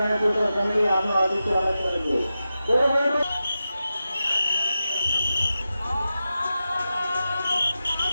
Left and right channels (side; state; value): both; inverted; correlation -0.92